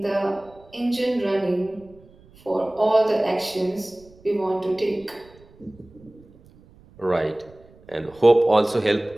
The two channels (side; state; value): right; noise; rumble, 26 dB below the sound